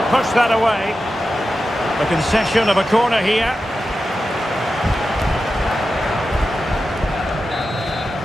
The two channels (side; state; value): both; normal; correlation 0.91